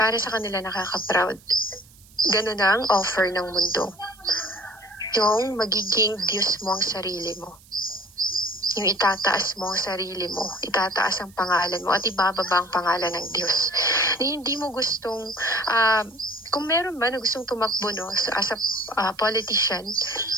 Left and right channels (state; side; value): noise; right; hiss, 26 dB below the sound